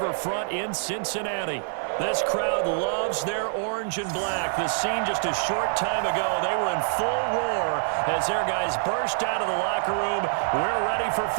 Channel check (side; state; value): left; silent; 58 dB below the other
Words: in Cincinnati. This crowd loves their orange and black. The scene just a short time ago, they were in full roar as their guys burst out of the locker room. We're ready for